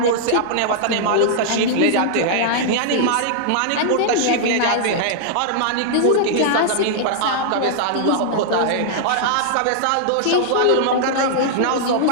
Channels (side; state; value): both; different; correlation -0.01